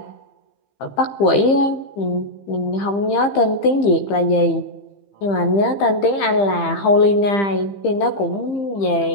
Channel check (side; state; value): right; late; 15 ms